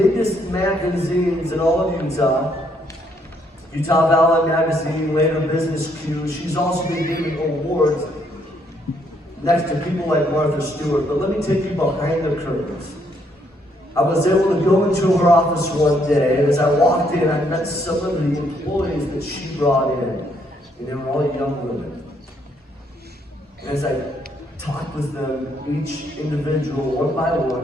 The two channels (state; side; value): normal; both; correlation 0.71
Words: magazines in all of Utah Valley Magazine, later Business Q. She's also been giving awards next to people like Martha Stewart. But let me take you behind the curtains. I was able to go into her office one day, and as I walked in, I met some of the employees that she brought in, and they were all young women. And as I talked with them, each individual, one by